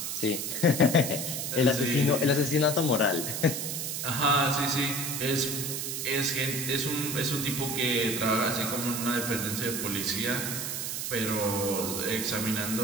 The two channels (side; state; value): right; noise; hiss, 3 dB below the sound